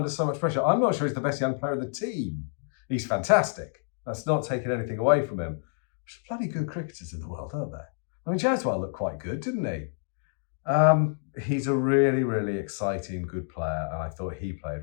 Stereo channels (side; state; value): right; silent; digital silence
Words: so much pressure. I'm not sure he's the best young player in the team. He's fantastic. That's not taking anything away from him. There's bloody good cricketers in the world, aren't there? I mean, Jaswal looked quite good, didn't he? He's a really, really exciting, good player, and I thought he played